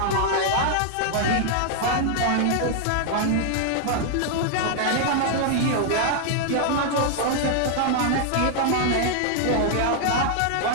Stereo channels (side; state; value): both; different; correlation 0.00